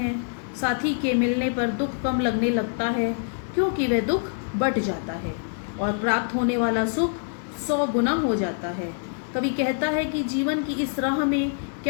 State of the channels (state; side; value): silent; right; digital silence